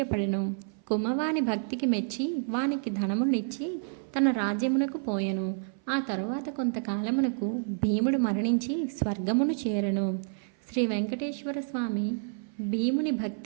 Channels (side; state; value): left; silent; 57 dB below the other